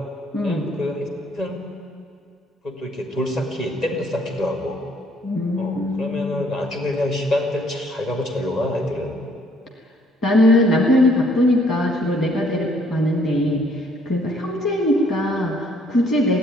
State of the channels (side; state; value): both; normal; correlation 0.64